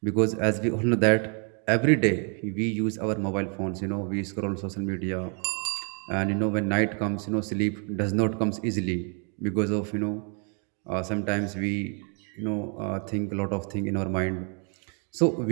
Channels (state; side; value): quieter; left; 39.6 dB